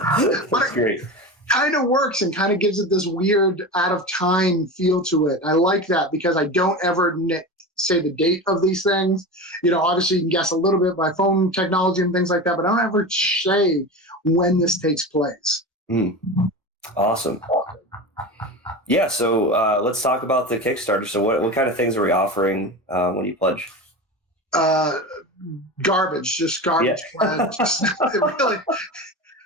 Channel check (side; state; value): both; normal; correlation 0.27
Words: great. Kind of works and kind of gives it this weird out of time feel to it. I like that because I don't ever say the date of these things. Obviously you can guess a little bit by phone technology and things like that, but I don't ever say when this takes place. Awesome. Yeah, so let's talk about the Kickstarter. So what kind of things are we offering when you pledge? Garbage, just garbage. Yeah.